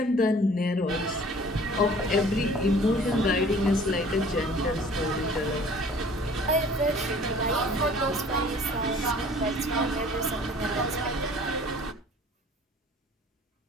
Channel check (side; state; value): both; normal; correlation 0.50